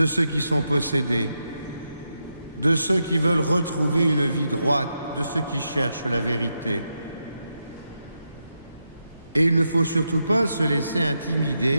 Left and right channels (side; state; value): both; inverted; correlation -0.85